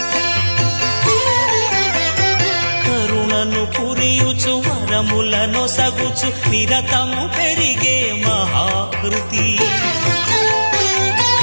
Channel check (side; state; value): both; inverted; correlation -1.00